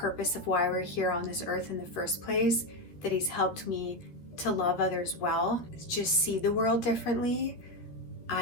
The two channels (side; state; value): right; late; 13 ms